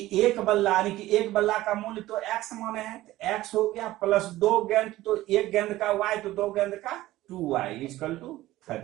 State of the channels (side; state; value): left; quieter; 16.3 dB